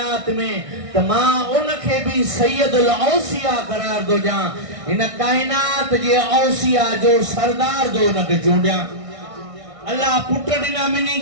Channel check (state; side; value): late; left; 1.6 ms